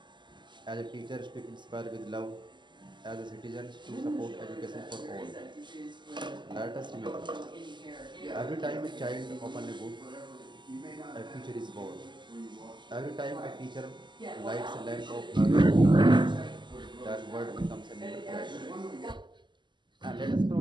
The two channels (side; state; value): left; late; 0.22 ms